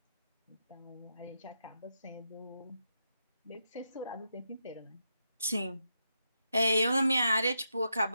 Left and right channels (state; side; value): inverted; both; correlation -0.85